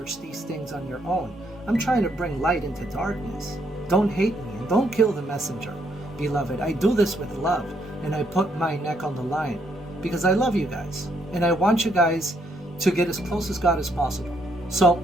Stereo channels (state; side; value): normal; both; correlation 0.72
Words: these things on your own. I'm trying to bring light into darkness. Don't hate me and don't kill the messenger, beloved. I do this with love. And I put my neck on the line because I love you guys and I want you guys to get as close as God as possible. So